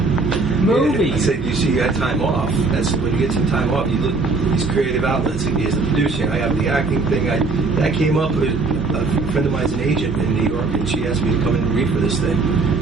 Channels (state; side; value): quieter; left; 3.8 dB